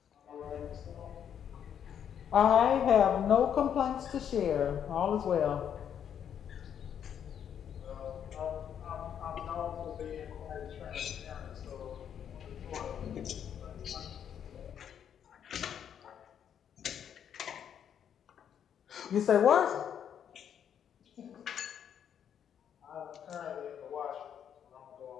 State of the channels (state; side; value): quieter; right; 8.8 dB